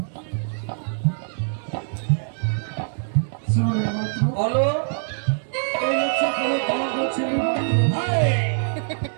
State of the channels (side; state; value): left; silent; digital silence